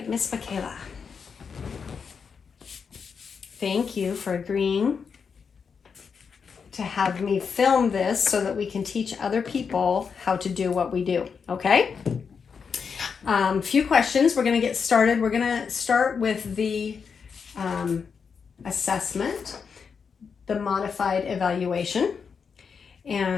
Miss Michaela. Thank you for agreeing to have me film this so that we can teach other people how to do what we do, okay? Few questions. We're going to get started. We're going to start with the assessment, the modified evaluation.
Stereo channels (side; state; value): right; quieter; 6.0 dB